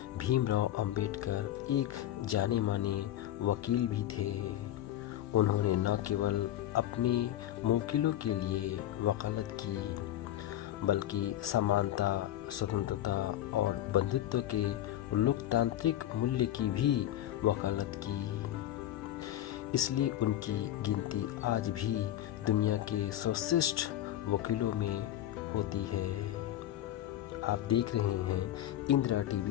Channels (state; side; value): quieter; right; 12.7 dB